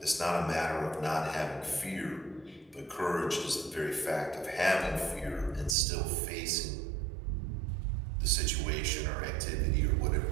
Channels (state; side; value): drops out; left; at 5.8 s